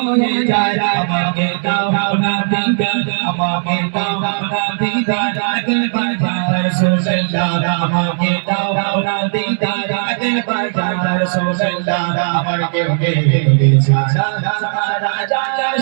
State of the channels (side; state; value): left; silent; digital silence